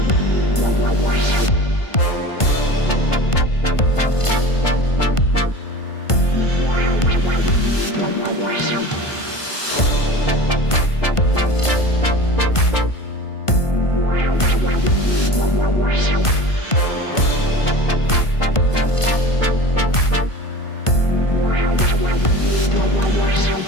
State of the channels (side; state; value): right; late; 1.5 ms